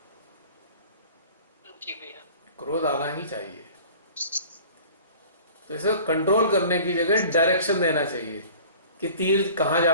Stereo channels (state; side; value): inverted; both; correlation -0.45